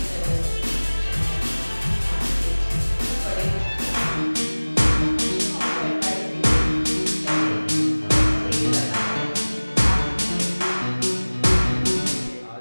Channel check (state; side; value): inverted; both; correlation -1.00